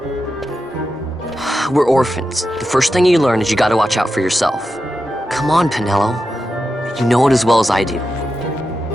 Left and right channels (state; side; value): normal; both; correlation 0.90